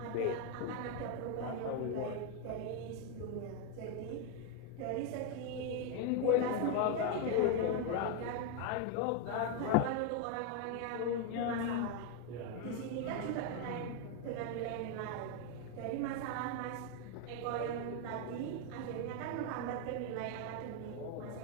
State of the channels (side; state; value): both; different; correlation 0.01